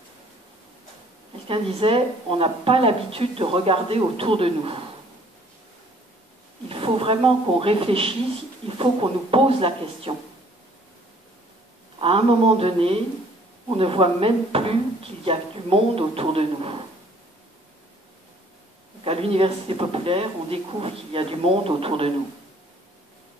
Quelqu'un disait, on n'a pas l'habitude de regarder autour de nous. Il faut vraiment qu'on réfléchisse, il faut qu'on nous pose la question. À un moment donné, on ne voit même plus qu'il y a du monde autour de nous. Donc à l'université populaire, on découvre qu'il y a du monde autour de nous.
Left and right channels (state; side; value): normal; both; correlation 0.58